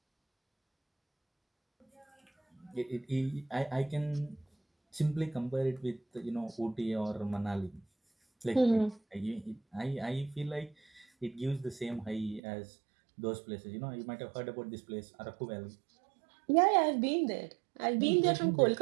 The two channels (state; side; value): drops out; left; at 12.4 s